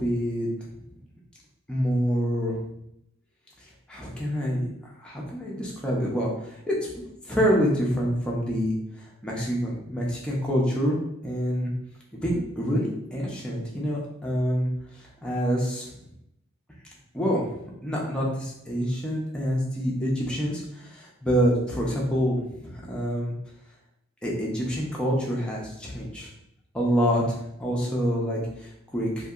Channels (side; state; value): both; normal; correlation 0.71